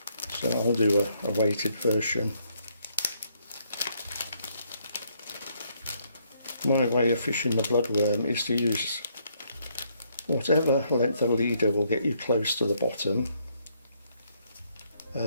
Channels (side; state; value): both; inverted; correlation -0.71